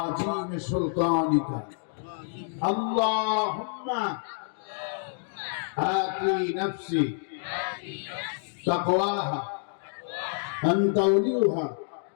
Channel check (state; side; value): silent; right; digital silence